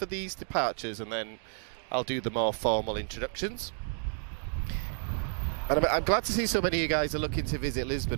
these departures and then I'll do the more formal introductions. And I'm glad to see so many of you guys are looking to visit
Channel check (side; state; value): left; silent; 57 dB below the other